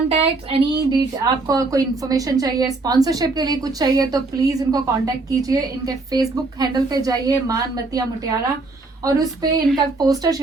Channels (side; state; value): left; quieter; 3.4 dB